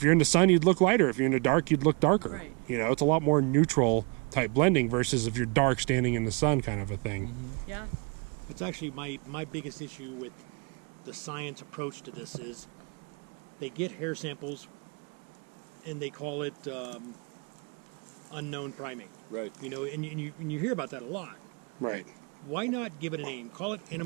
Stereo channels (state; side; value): quieter; left; 32.1 dB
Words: you're in the sun, you'd look lighter. If you're in the dark, you'd look darker. Right. It's a lot more neutral type blending versus if you're dark standing in the sun kind of a thing. Mm-hmm. Yeah. That's actually my biggest issue with the science approach to this is they get hair samples and they call it unknown primate. Right. And you hear about that a lot. Right. Why not give it a name? Call it